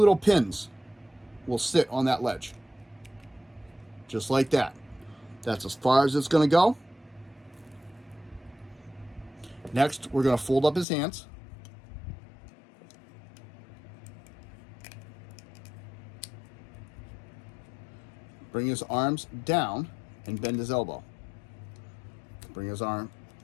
pins will sit on that ledge. Just like that. That's as far as it's going to go. Next, we're going to fold up his hands. Bring his arms down and bend his elbow. Bring his arm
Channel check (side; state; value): right; drops out; at 10.9 s